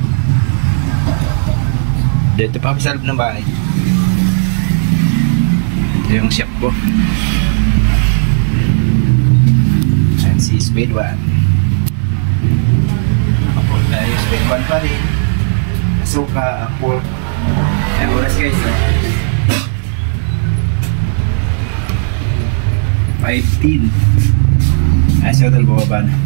Dito pa kami sa loob ng bahay. Ito yung shop ko. Ayan si speed walk. Nakapol tayo, speed walk pa rin. Suka, apple. Ayan, oras guys, no? 5:10. Ayan, si Hotel bumaba na.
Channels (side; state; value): left; silent; digital silence